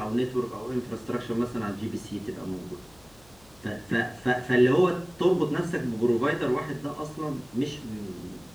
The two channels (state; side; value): noise; left; hum, 28 dB below the sound